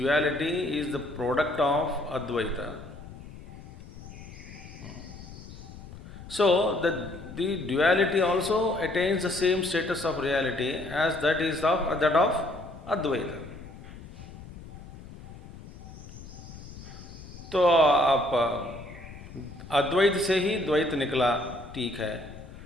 is the product of Advaita. So the duality also attains the same status of reality as that of Advaita. तो आप अद्वैत से ही द्वैत निकला, ठीक है,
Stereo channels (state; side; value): noise; left; rumble, 15 dB below the sound